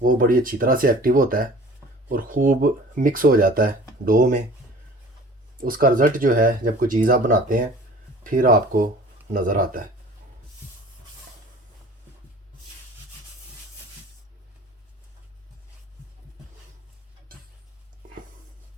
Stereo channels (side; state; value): both; normal; correlation 0.46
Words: बड़ी अच्छी तरह से एक्टिव होता है और ख़ूब मिक्स हो जाता है डो में। उसका रिज़ल्ट जो है जब कोई चीज़ आप बनाते हैं फिर आपको नज़र आता है।